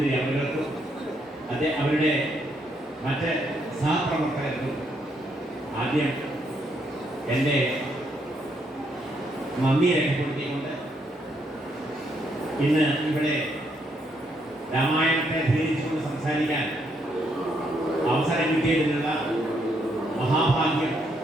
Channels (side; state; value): both; normal; correlation 0.75